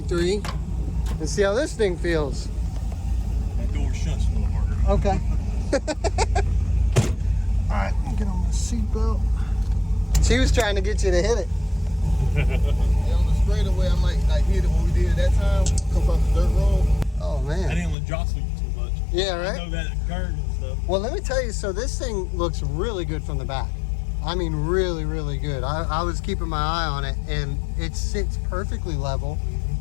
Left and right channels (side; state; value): right; drops out; at 17.9 s